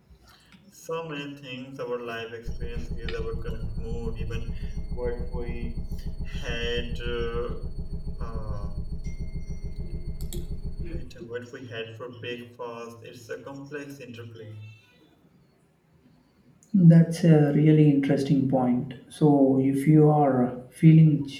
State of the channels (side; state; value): both; identical; correlation 1.00